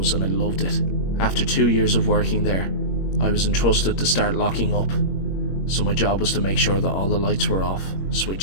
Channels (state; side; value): late; right; 21 ms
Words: and I loved it. After 2 years of working there, I was entrusted to start locking up, so my job was to make sure that all the lights were off,